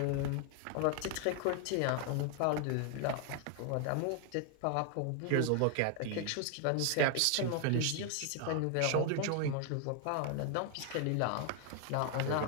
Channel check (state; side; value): different; both; correlation 0.00